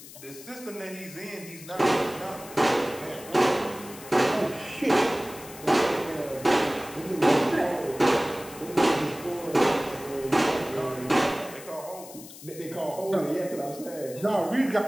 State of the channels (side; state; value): left; noise; hiss, 16 dB below the sound